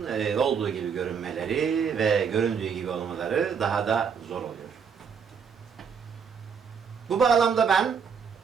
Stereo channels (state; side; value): quieter; left; 6.6 dB